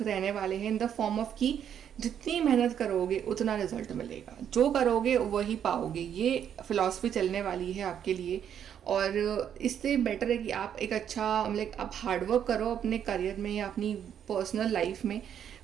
रहने वाले हैं, इन द फॉर्म ऑफ कि जितनी मेहनत करोगे उतना रिजल्ट मिलेगा, जो करोगे वही पाओगे। ये फिलॉसफी चलने वाली है आपके लिए, और इससे बेटर है कि आप एक अच्छा आप हार्डवर्क करो अपने करियर में या अपनी पर्सनल लाइफ में,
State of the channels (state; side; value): quieter; left; 9.1 dB